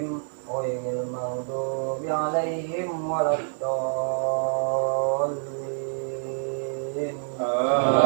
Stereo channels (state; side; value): silent; left; digital silence